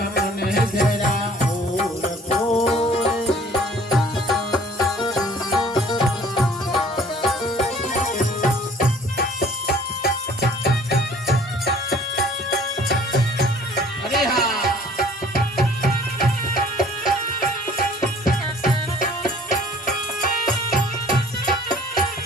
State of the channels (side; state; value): both; normal; correlation 0.53